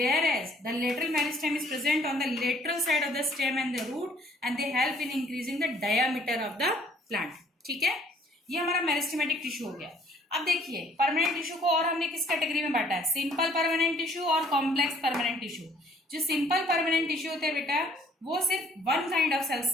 the lateral meristem is present on the lateral side of the stem and the root, and they help in increasing the diameter of the plant. ठीक है, ये हमारा meristematic tissue हो गया। अब देखिए permanent tissue को और हमने किस कैटेगरी में बांटा है? सिंपल परमानेंट टिश्यू और कॉम्प्लेक्स परमानेंट टिश्यू। जो सिंपल परमानेंट टिश्यू होते हैं बेटा, वो सिर्फ वन काइंड ऑफ सेल्स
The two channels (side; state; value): both; normal; correlation 0.59